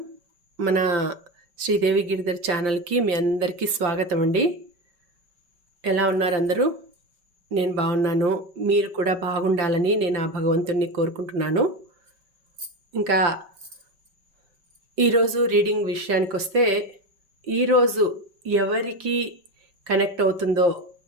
మన శ్రీదేవి గిరిధర్ ఛానల్కి మీ అందరికీ స్వాగతం అండి. ఎలా ఉన్నారు అందరూ? నేను బాగున్నాను. మీరు కూడా బాగుండాలని నేను ఆ భగవంతుణ్ణి కోరుకుంటున్నాను. ఇంకా ఈరోజు రీడింగ్ విషయానికి వస్తే, ఈరోజు ఎవరికి కనెక్ట్ అవుతుందో,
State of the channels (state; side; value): late; left; 5.2 ms